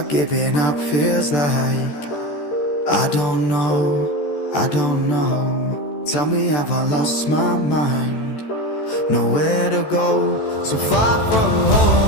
giving up feels like? I don't know, I don't know. Tell me, have I lost my mind? Nowhere to go, so far from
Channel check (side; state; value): right; late; 14 ms